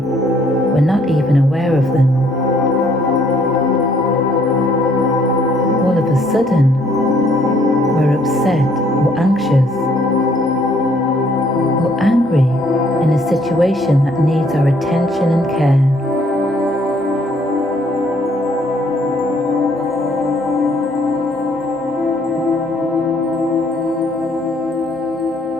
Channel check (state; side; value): normal; both; correlation 0.65